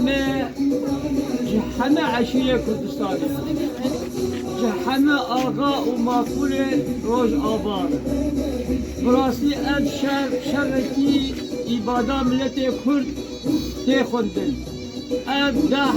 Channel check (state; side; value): identical; both; correlation 1.00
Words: جحنا عشية كردستاني جحنا آغا وماكولة روج آبار براسي أب شركي إبادة ملتي كرد تيخوندن أب